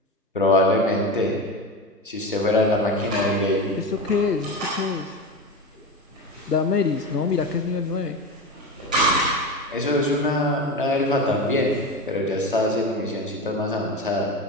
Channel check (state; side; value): normal; both; correlation 0.24